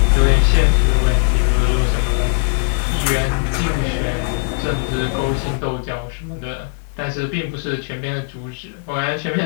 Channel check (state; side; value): silent; right; digital silence